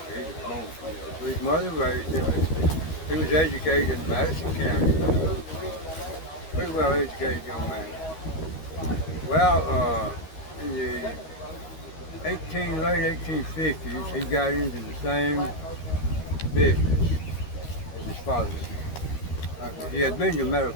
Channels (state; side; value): late; right; 13 ms